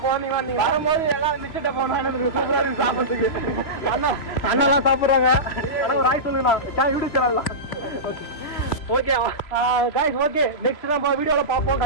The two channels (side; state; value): right; late; 3.0 ms